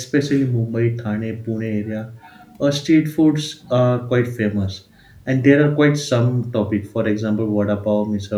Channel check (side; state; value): both; identical; correlation 1.00